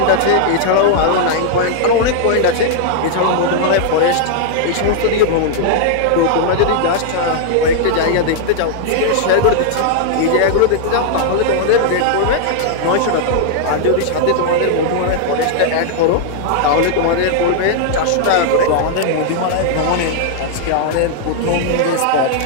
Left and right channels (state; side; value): different; both; correlation -0.01